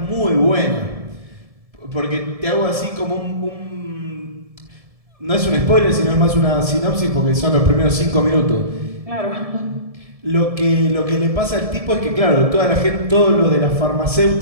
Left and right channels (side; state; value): left; late; 1.7 ms